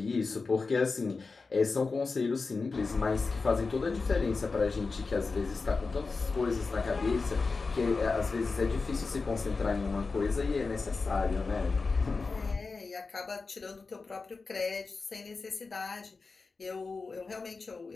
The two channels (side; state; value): right; quieter; 4.2 dB